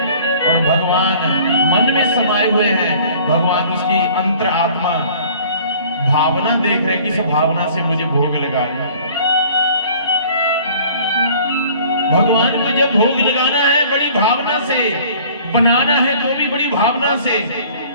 और भगवान मन में समाये हुए हैं। भगवान उसकी अंतर आत्मा भावना देख रहे, किस भावना से मुझे भोग लगा रहे हैं। भगवान को जब भोग लगाना है बड़ी भावना से, बनाना है तो भी बड़ी भावना से।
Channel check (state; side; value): inverted; both; correlation -0.51